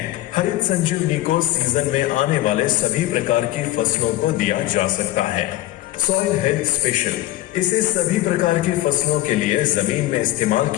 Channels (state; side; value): quieter; right; 15.7 dB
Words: हरित संजीवनी को सीजन में आने वाले सभी प्रकार की फसलों को दिया जा सकता है। सॉइल हेल्थ स्पेशल, इसे सभी प्रकार की फसलों के लिए जमीन में इस्तेमाल